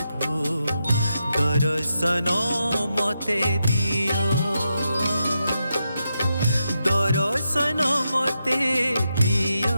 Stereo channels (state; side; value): inverted; both; correlation -0.86